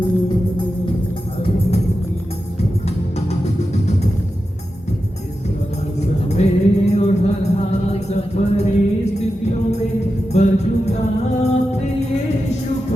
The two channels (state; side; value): normal; both; correlation 0.91